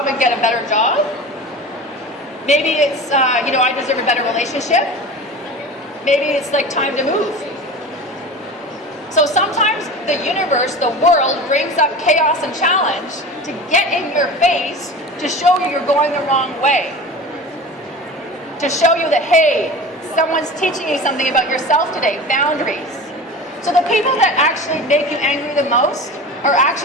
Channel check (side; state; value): both; normal; correlation 0.33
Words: and get a better job. Maybe it's, I deserve a better relationship. Maybe it's like time to move. So sometimes the universe, the world, brings up chaos and challenge to get in your face to show you you're going the wrong way. To show you that, hey, someone's teaching you something about yourself today, boundaries. So the people that actually make you angry the most are